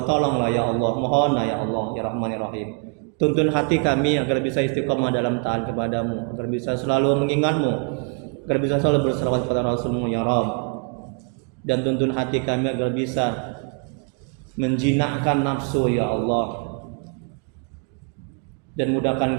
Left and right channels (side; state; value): left; quieter; 37.2 dB